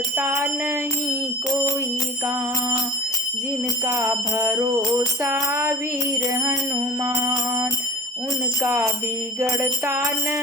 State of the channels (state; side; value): normal; both; correlation 0.39